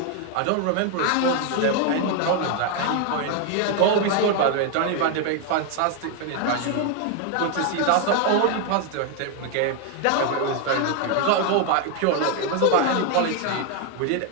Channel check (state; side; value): different; both; correlation 0.01